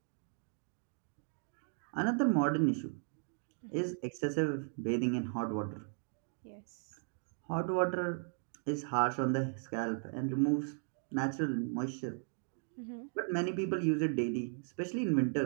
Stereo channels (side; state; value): left; silent; 53 dB below the other